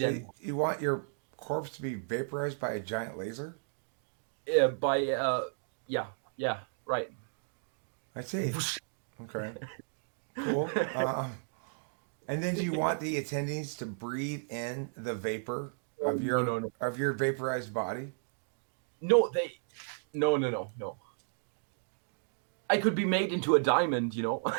and you want your corpse to be vaporized by a giant laser? by yeah, yeah, right. I see. Okay, cool. And then do you want the attendees to breathe in the vapor No, no, no, no, of your vaporized body? no, no, no, no, no. I could be made into a diamond,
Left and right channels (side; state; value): left; silent; digital silence